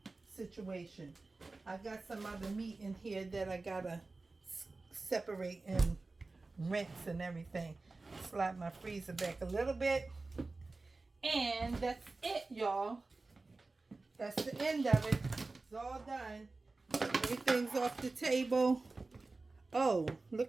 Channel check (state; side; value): quieter; left; 3.5 dB